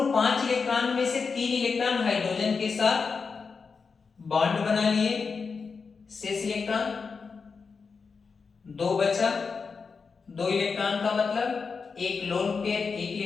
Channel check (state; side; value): quieter; right; 5.1 dB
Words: 5 इलेक्ट्रॉन में से 3 इलेक्ट्रॉन हाइड्रोजन के साथ बॉन्ड बना लिए, शेष इलेक्ट्रॉन 2 बचा। 2 इलेक्ट्रॉन का मतलब एक लोन पेयर, एक